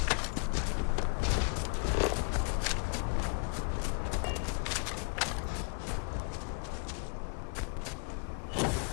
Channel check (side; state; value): right; quieter; 37.7 dB